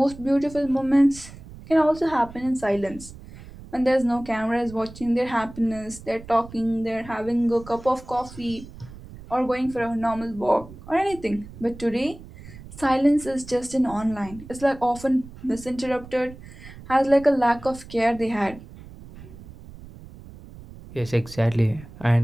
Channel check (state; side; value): noise; right; rumble, 17 dB below the sound